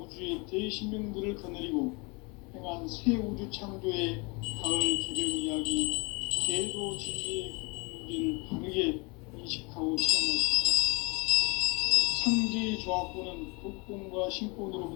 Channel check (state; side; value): quieter; right; 29.2 dB